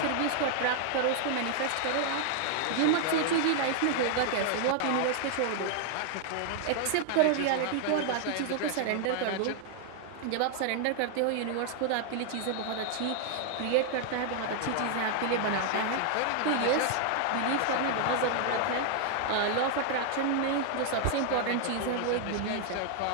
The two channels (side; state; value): both; different; correlation 0.00